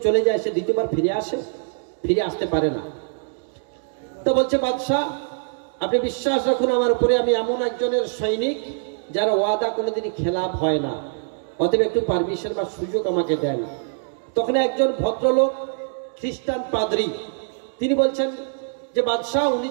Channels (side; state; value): left; silent; digital silence